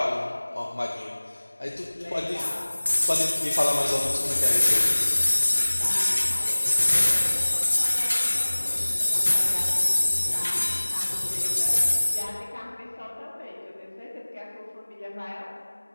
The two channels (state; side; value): inverted; both; correlation -1.00